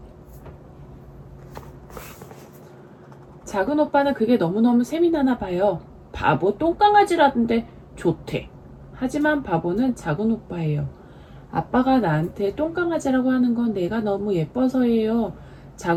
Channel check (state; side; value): identical; both; correlation 1.00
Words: 작은 오빠는 그게 너무너무 셈이 나나 봐요. 바보 똥강아지라던데 좋대. 하지만 바보는 작은 오빠예요. 아빠가 나한테 똥강아지라고 하는 건 내가 너무 예뻐서예요.